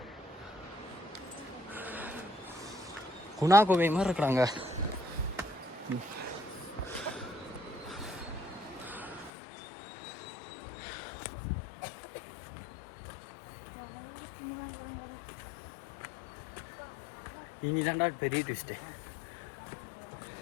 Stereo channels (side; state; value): right; drops out; at 9.3 s